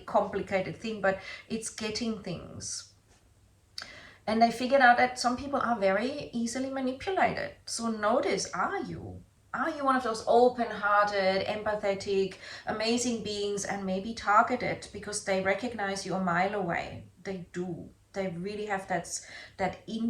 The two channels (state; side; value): identical; both; correlation 1.00